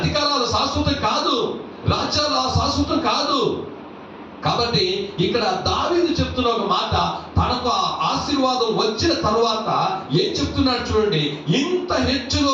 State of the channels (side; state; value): both; identical; correlation 1.00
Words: శాశ్వతం కాదు, రాజ్యాలు శాశ్వతం కాదు. కాబట్టి ఇక్కడ దావీదు చెప్తున్న ఒక మాట, తనకు ఆశీర్వాదం వచ్చిన తర్వాత ఏం చెప్తున్నాడు చూడండి, ఇంత